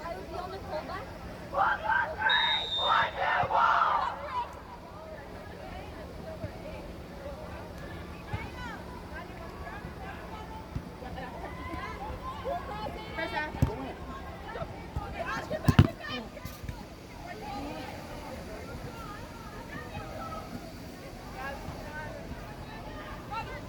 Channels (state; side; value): identical; both; correlation 1.00